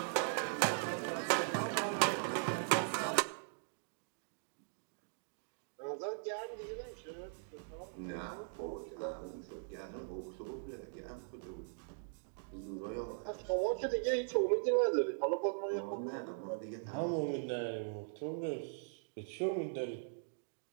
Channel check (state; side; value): silent; left; digital silence